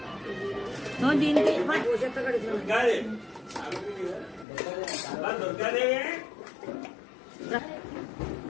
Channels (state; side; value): drops out; right; at 4.5 s